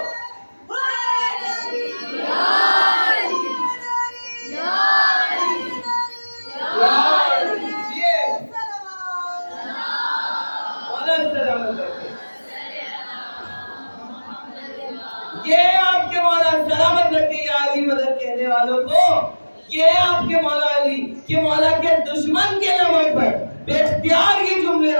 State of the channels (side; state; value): both; inverted; correlation -1.00